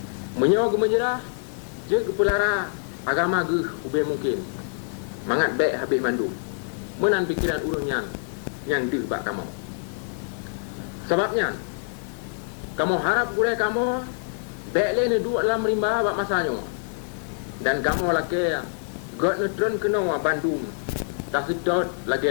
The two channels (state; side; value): silent; right; digital silence